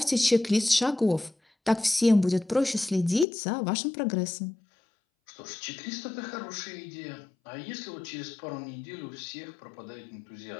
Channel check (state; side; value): drops out; right; at 3.2 s